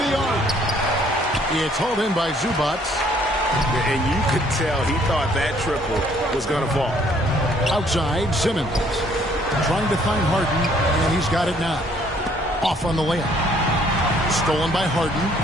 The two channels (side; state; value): both; normal; correlation 0.63